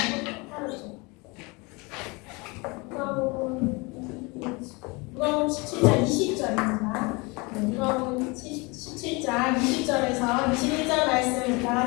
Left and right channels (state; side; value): quieter; right; 27.1 dB